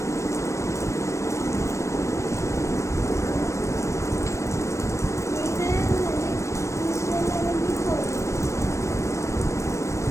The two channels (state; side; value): late; right; 0.15 ms